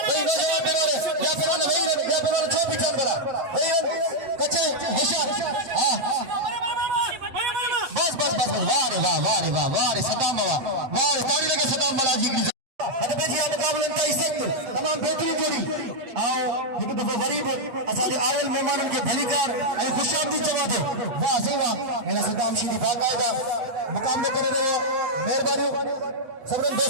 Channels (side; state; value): left; late; 7.6 ms